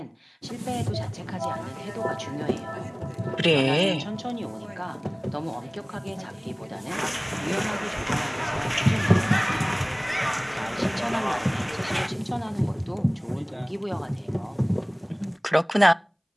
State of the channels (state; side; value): identical; both; correlation 1.00